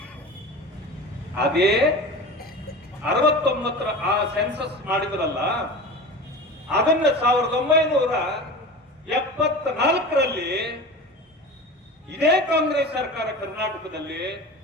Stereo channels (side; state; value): both; normal; correlation 0.32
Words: ಅದೇ 69ರ ಆ ಸೆನ್ಸಸ್ ಮಾಡಿದ್ರಲ್ಲ, ಅದನ್ನ 1974ರಲ್ಲಿ ಇದೇ ಕಾಂಗ್ರೆಸ್ ಸರ್ಕಾರ ಕರ್ನಾಟಕದಲ್ಲಿ